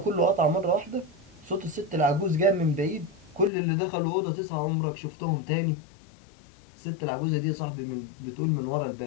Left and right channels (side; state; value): right; drops out; at 3.5 s